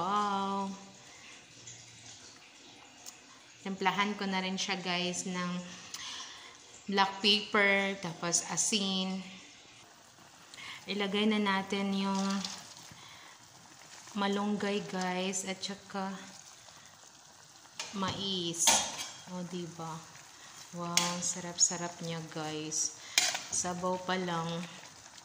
Templahan ko na rin siya guys ng black pepper, tapos asin. Ilagay na natin yung malunggay guys at saka mais. O diba? Wow, sarap-sarap niya guys. Sabaw pa lang,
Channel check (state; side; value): identical; both; correlation 1.00